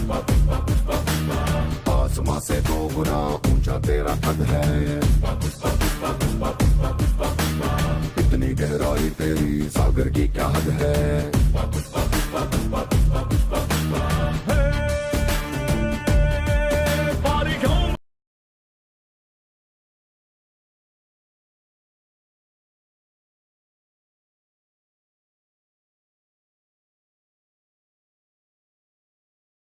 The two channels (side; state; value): both; identical; correlation 1.00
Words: आसमां से दो गुना ऊंचा तेरा कद है इतनी गहराई तेरी सागर की क्या हद है